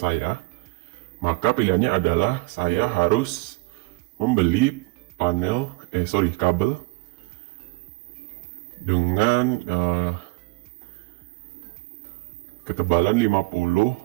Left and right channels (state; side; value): quieter; left; 24.7 dB